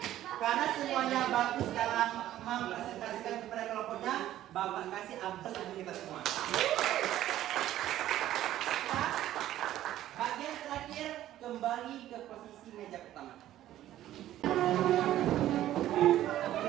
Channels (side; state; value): left; quieter; 13.2 dB